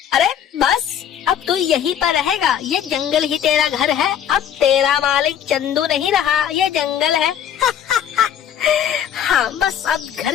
अरे बस अब तू यहीं पर रहेगा, ये जंगल ही तेरा घर है, अब तेरा मालिक चंदू नहीं रहा, ये जंगल है। हाँ बस अब घर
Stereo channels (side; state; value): right; quieter; 9.4 dB